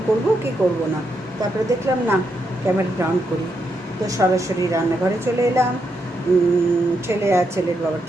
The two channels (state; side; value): normal; both; correlation 0.81